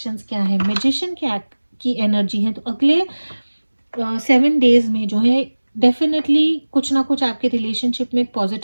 क्या है, मैजिशियन की एनर्जी है। तो अगले 7 डेज में जो है डेफिनेटली कुछ ना कुछ आपके रिलेशनशिप में एक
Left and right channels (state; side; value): inverted; both; correlation -1.00